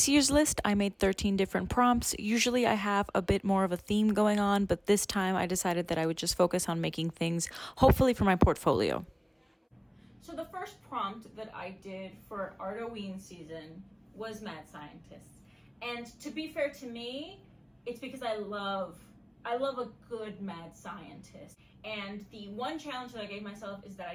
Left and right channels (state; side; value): identical; both; correlation 1.00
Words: year's list, I made 13 different prompts. Usually I have a bit more of a theme going on, but this time I decided that I would just focus on making things, hopefully for my portfolio. So the first prompt that I did for Artoween season was Mad Scientists. And to be fair to me, it's because I love a good mad scientist. And the one challenge that I gave myself is that I